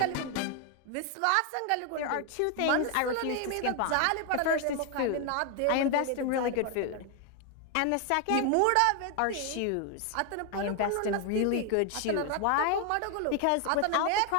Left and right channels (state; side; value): different; both; correlation 0.01